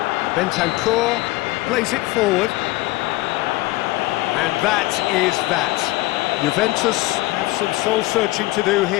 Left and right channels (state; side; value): quieter; right; 19.6 dB